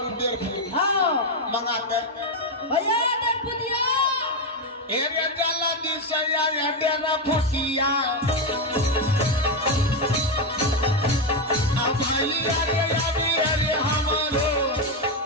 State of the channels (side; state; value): both; normal; correlation 0.07